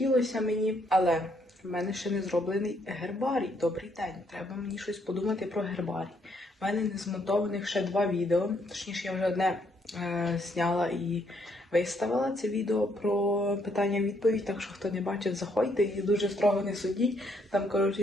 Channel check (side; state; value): both; normal; correlation 0.71